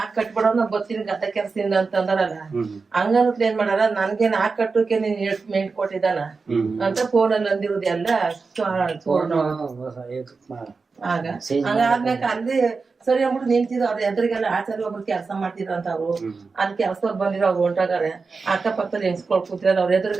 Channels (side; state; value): left; quieter; 4.5 dB